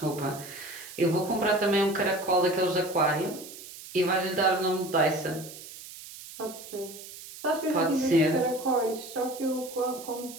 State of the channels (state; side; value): noise; right; hiss, 14 dB below the sound